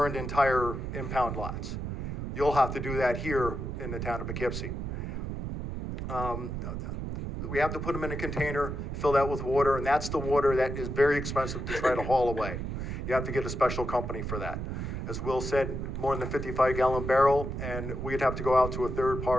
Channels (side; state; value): right; noise; rumble, 4 dB below the sound